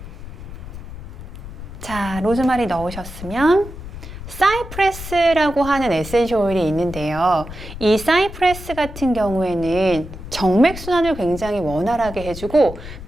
자, 로즈마리 넣으셨으면 사이프레스라고 하는 에센셜 오일이 있는데요. 이 사이프레스 같은 경우에는 정맥순환을 굉장히 원활하게 해주고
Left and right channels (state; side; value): noise; left; rumble, 12 dB below the sound